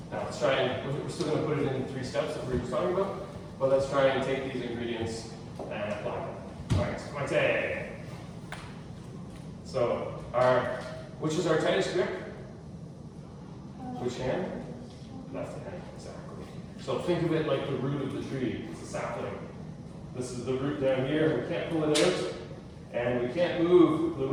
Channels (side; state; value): both; identical; correlation 1.00